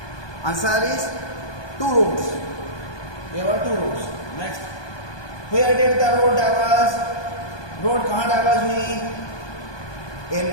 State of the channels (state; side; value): late; right; 1.2 ms